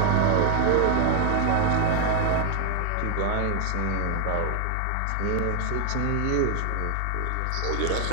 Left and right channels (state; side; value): different; both; correlation 0.00